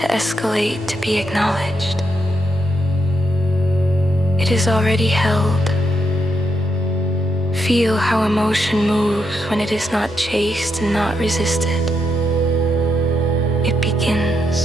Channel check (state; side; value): normal; both; correlation 0.80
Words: escalate to be acknowledged. It is already held. Feel how emotion moves when it is not chased and not resisted. It